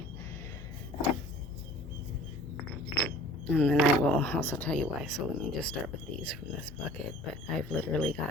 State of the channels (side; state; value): right; noise; rumble, 20 dB below the sound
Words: and then I will also tell you why. So let me just start with these from this bucket, but I've literally